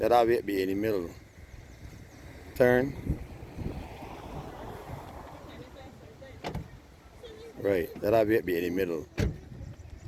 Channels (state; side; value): identical; both; correlation 1.00